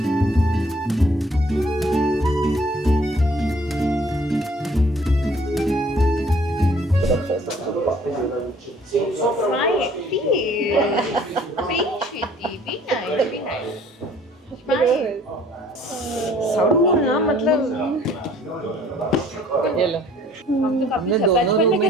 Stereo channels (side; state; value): both; normal; correlation 0.57